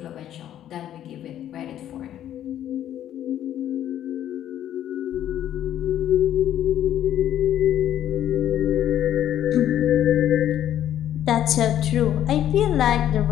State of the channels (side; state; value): right; quieter; 11.2 dB